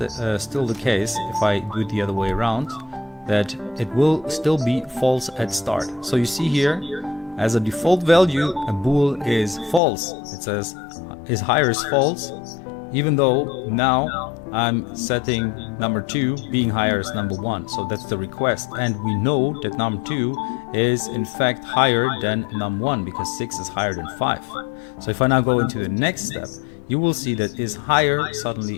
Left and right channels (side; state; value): right; drops out; at 9.8 s